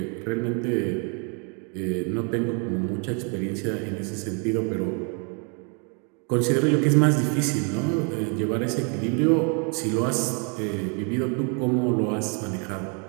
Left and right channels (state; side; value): quieter; left; 37.3 dB